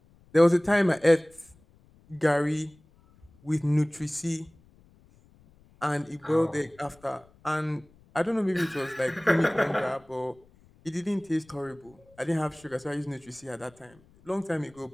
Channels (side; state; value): left; noise; rumble, 29 dB below the sound